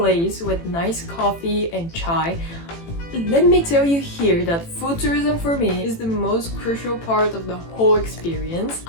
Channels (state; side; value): late; right; 18 ms